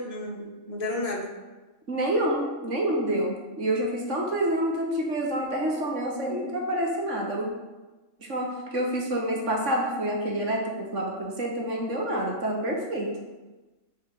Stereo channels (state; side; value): late; left; 3.5 ms